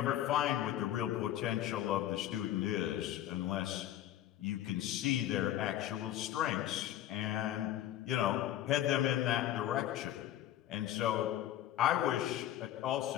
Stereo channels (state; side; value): quieter; right; 12.4 dB